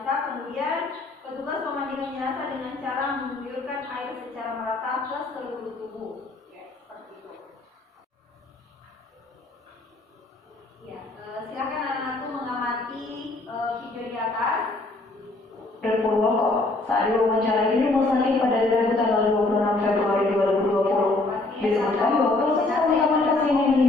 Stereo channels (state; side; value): quieter; right; 3.0 dB